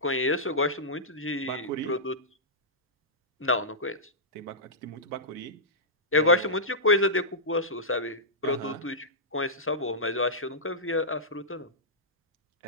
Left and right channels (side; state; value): both; normal; correlation -0.14